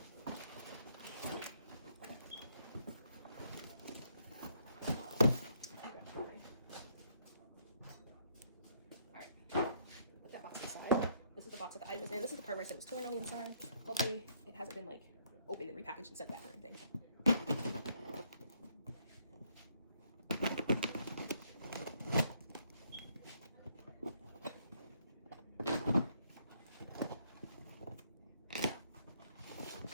Alright, put that box aside. This is the box that the item is in. This is the part where I said it was torn on the inside. Hopefully it hasn't been like opened and repackaged and sent back or anything.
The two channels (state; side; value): inverted; both; correlation -0.70